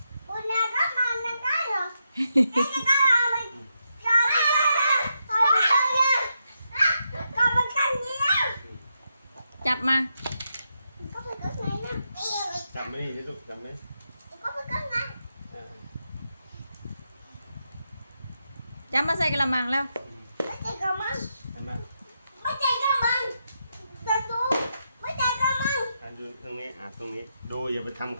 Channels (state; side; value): inverted; both; correlation -0.84